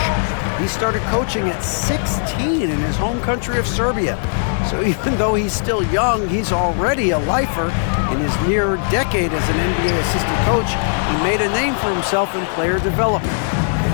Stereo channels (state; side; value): silent; right; digital silence